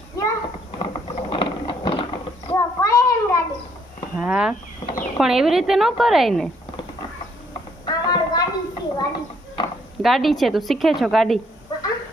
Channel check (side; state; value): both; normal; correlation 0.68